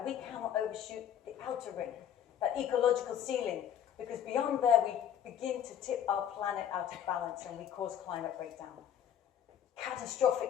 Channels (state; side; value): quieter; right; 9.6 dB